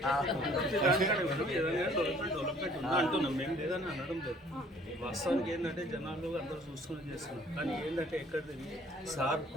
అంటున్నాం మేము లేదని అనడం లేదు. వాస్తవానికి ఏంటంటే జనాలు అందరూ చూసుకుని చేస్తున్నారు. కానీ ఏంటంటే ఎక్కడిది సార్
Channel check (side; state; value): both; normal; correlation 0.56